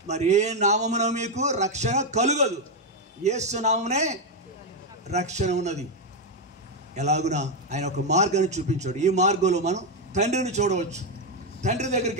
మరి ఏ నామమున మీకు రక్షణ కలుగదు, యేసు నామమునే రక్షణ ఉన్నది. ఎలాగునా ఆయన ఒక మార్గాన్ని చూపించాడు. ఈ మార్గంలో మనం తండ్రిని చూడవచ్చు, తండ్రి దగ్గరికి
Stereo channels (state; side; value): normal; both; correlation 0.04